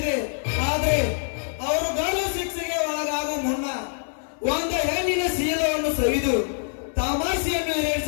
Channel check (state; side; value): silent; right; 62 dB below the other